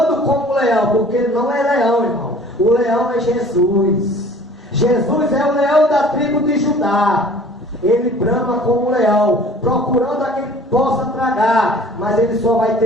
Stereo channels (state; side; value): normal; both; correlation 0.49